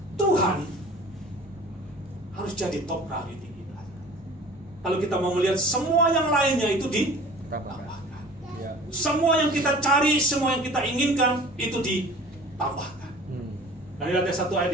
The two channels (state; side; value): normal; both; correlation 0.45